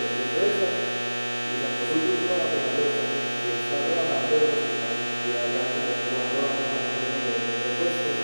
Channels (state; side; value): inverted; both; correlation -1.00